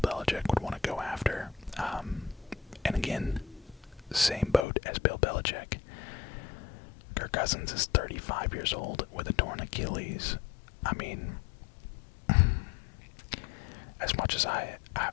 would want to go after. And again, same boat as Bill Belichick. Kirk Cousins is 35 years old with a torn Achilles. I mean, as much as I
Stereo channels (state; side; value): drops out; right; at 4.7 s